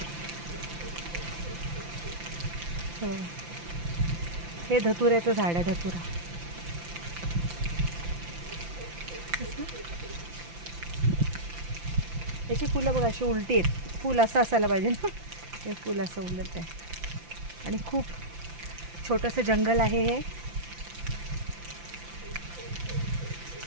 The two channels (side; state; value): left; late; 5.9 ms